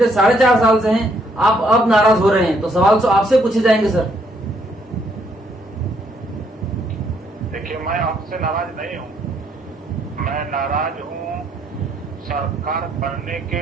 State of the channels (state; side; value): normal; both; correlation 0.70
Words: 4.5 साल से हैं, आप अब नाराज हो रहे हैं, तो सवाल तो आपसे पूछे जाएंगे सर। देखिए, मैं आपसे नाराज नहीं हूँ, मैं नाराज हूँ सरकार बनने